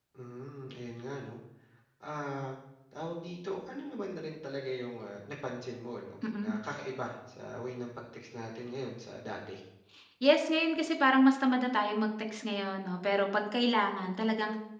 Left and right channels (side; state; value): both; identical; correlation 1.00